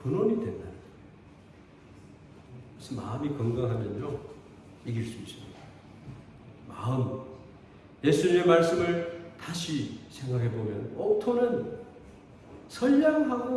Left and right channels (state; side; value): identical; both; correlation 1.00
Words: 근원이 된다는 거예요. 그래서 마음이 건강하면요, 이길 수 있습니다. 마음, 예수님의 말씀을 다시 생각해 보면 옥토는